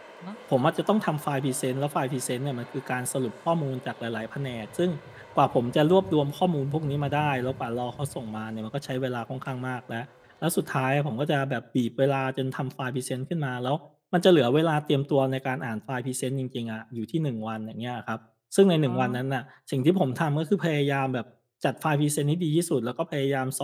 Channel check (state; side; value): identical; both; correlation 1.00